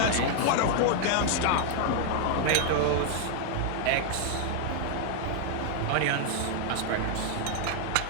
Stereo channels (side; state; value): both; different; correlation 0.00